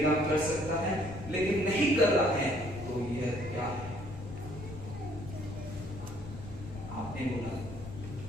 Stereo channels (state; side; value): noise; left; rumble, 12 dB below the sound